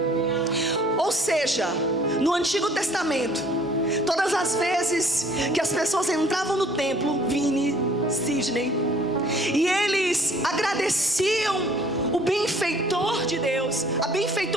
Ou seja, no Antigo Testamento, todas as vezes que as pessoas entravam no templo, Vini, Sidney, e eles agradeciam o benfeitor de Deus, a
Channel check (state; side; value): normal; both; correlation 0.56